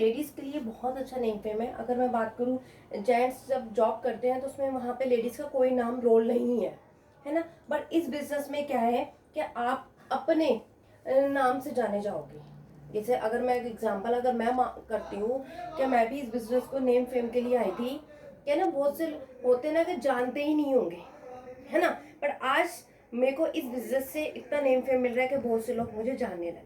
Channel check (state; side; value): identical; both; correlation 1.00